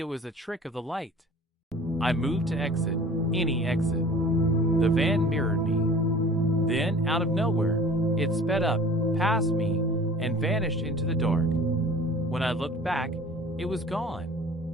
was a trick of the light. I moved to exit, any exit. The van mirrored me. Then, out of nowhere, it sped up, past me, and vanished into the dark. When I looked back, it was gone.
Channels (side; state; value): both; normal; correlation 0.45